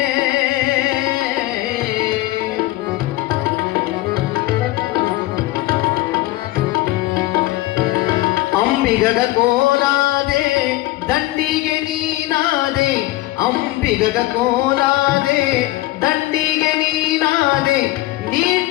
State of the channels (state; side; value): quieter; right; 17.4 dB